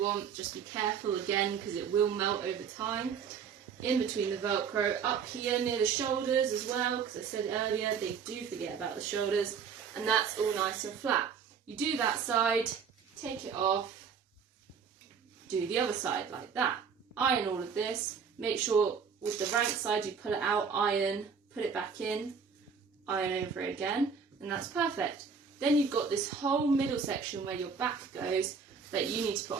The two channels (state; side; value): quieter; left; 6.3 dB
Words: want, just be careful again because it will melt over time. In between the Velcro, up here near the shoulders as well, because I said earlier they do forget about the shoulders, and that's all nice and flat. You do that side, take it off, do the other side like that. Iron all of this, make sure with the rank side you pull it out, iron, put it back in, iron over it again, and that's perfect. Then you've got this whole middle section where your back goes that you need to put